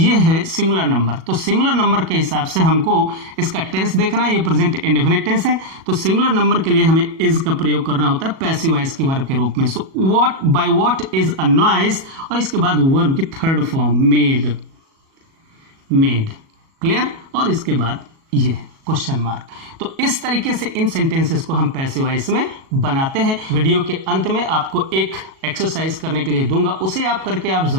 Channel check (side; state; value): left; late; 37 ms